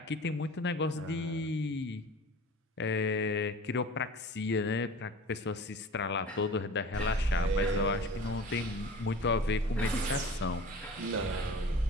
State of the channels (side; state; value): both; normal; correlation 0.40